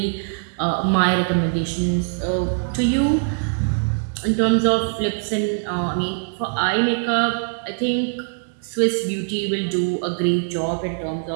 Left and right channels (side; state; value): left; silent; digital silence